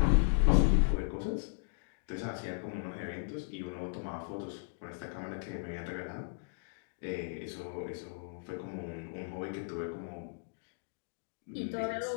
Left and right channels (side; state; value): right; silent; digital silence